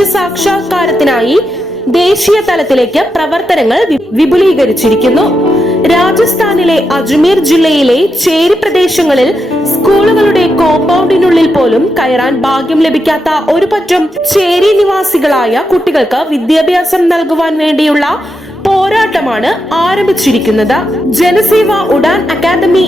ദേശീയ തലത്തിലേക്ക് പ്രവർത്തനങ്ങൾ വിപുലീകരിച്ചിരിക്കുന്നു. രാജസ്ഥാനിലെ അജ്മീർ ജില്ലയിലെ ചേരി പ്രദേശങ്ങളിൽ സ്കൂളുകളുടെ കോമ്പൗണ്ടിനുള്ളിൽ പോലും കയറാൻ ഭാഗ്യം ലഭിക്കാത്ത ഒരു പറ്റം ചേരി നിവാസികളായ കുട്ടികൾക്ക് വിദ്യാഭ്യാസം നൽകുവാൻ വേണ്ടിയുള്ള പോരാട്ടമാണ് ആരംഭിച്ചിരിക്കുന്നത്. ജനസേവ ഉഡാൻ അക്കാദമി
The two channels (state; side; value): normal; both; correlation 0.85